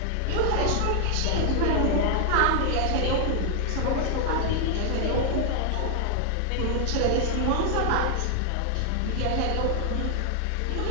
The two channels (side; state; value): both; different; correlation 0.00